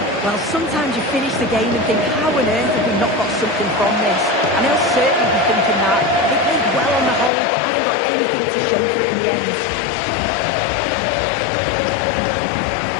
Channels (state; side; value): drops out; right; at 7.3 s